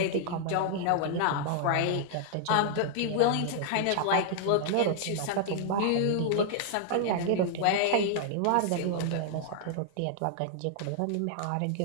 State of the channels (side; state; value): both; different; correlation -0.01